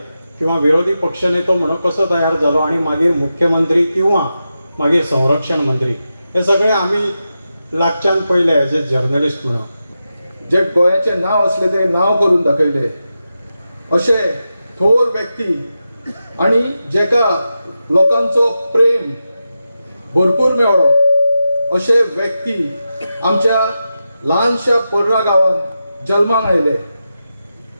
किंवा विरोधी पक्षनेतो म्हणून कसो तयार जालो आणि मागीर मुख्यमंत्री किंवा मागीर संरक्षण मंत्री, हे सगळे आमी लागच्यान पयले एज ए जर्नलिस्ट म्हणून. जे गोंयाचे नांव असले ते नांव करून दाखयले अशे थोर व्यक्ती आणि जेका लोकांचो प्रेम भरपूर मेळ्ळो अशे व्यक्ती आमच्या ल्हानशा पर्रा गांवांत जल्माक आयले.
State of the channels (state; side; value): inverted; both; correlation -0.90